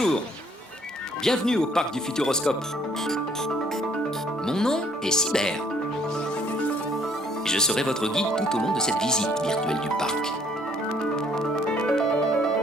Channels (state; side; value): normal; both; correlation 0.62